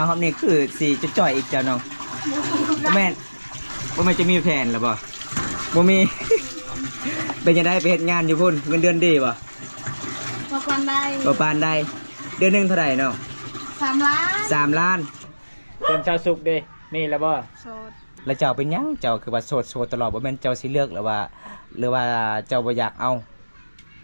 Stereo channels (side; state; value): both; inverted; correlation -1.00